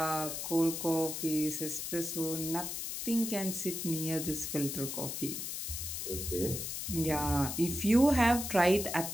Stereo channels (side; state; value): left; noise; hiss, 4 dB below the sound